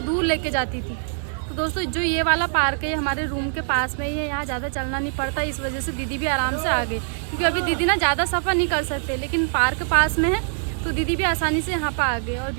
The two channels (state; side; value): silent; left; 63 dB below the other